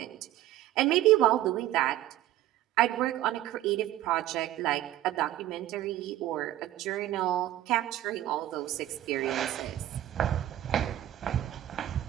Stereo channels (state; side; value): quieter; left; 13.7 dB